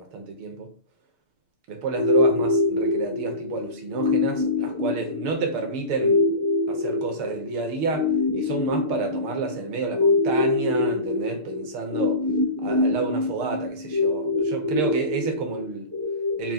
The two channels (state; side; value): late; left; 6.6 ms